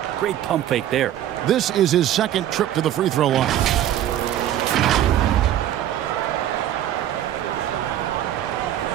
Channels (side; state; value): left; quieter; 11.8 dB